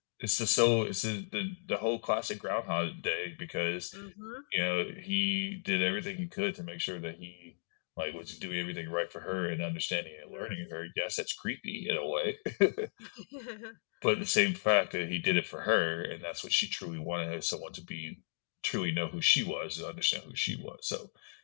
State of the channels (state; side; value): silent; right; digital silence